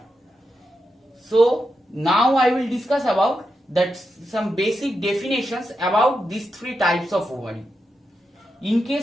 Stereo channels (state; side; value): normal; both; correlation 0.87